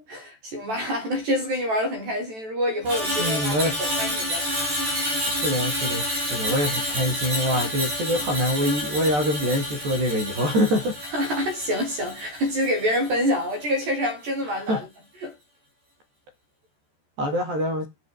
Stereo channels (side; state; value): left; late; 14 ms